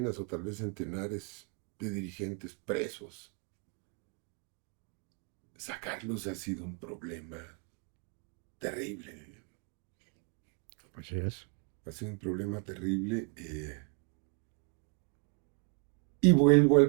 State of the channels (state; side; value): quieter; left; 36.3 dB